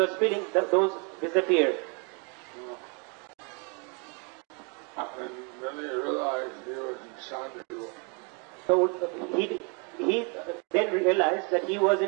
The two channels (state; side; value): quieter; left; 34.5 dB